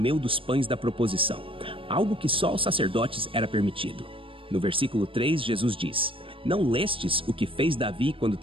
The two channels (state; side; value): late; left; 0.26 ms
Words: dos pães da proposição, algo que só aos sacerdotes era permitido. No versículo 3, Jesus diz: "Não lestes o que fez Davi quando